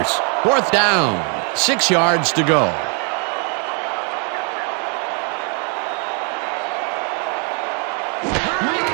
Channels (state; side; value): quieter; left; 38.8 dB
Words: Fourth down, 6 yards to go.